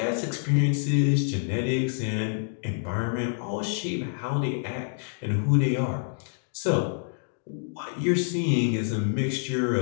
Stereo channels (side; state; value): right; silent; digital silence